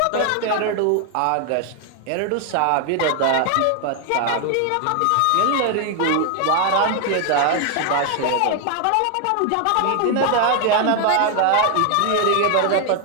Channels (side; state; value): both; different; correlation 0.00